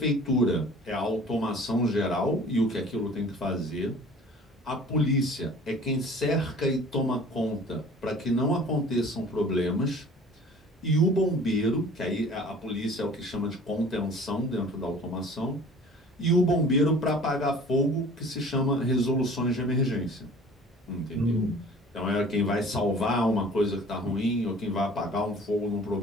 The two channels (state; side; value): normal; both; correlation 0.47